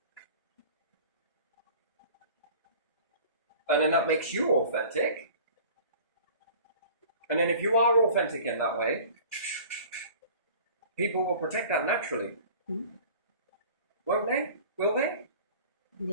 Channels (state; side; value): inverted; both; correlation -0.44